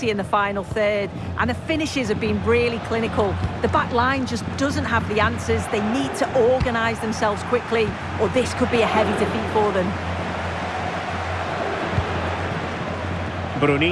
in the final third. And the finishes have been really clinical. The back line just doesn't have the answers. They need to organise themselves quickly, or this could be a heavy defeat for them.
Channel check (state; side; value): identical; both; correlation 1.00